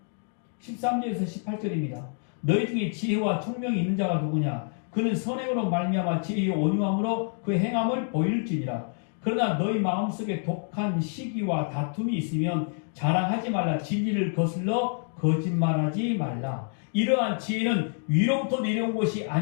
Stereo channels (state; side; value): silent; right; 60 dB below the other